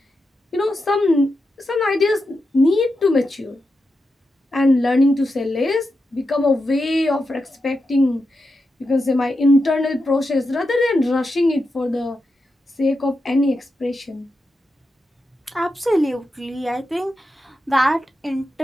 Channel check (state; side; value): normal; both; correlation 0.88